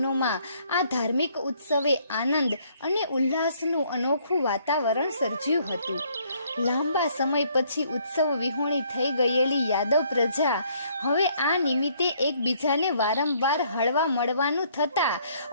આ ધાર્મિક ઉત્સવે આનંદ અને ઉલ્લાસનું અનોખું વાતાવરણ સર્જ્યું હતું. લાંબા સમય પછી ઉત્સવ વિહોણી થઈ ગયેલી યાદવ પ્રજા હવે આ નિમિત્તે એકબીજાને વારંવાર હળવા મળવાનું થતાં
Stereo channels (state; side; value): inverted; both; correlation -0.65